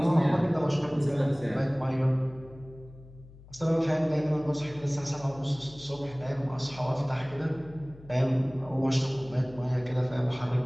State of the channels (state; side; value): noise; left; hum, 21 dB below the sound